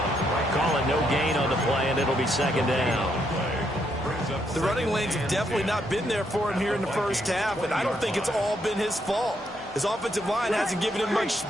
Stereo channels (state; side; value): normal; both; correlation 0.76